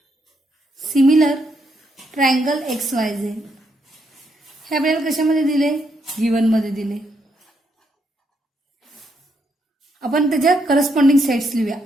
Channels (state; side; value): normal; both; correlation 0.77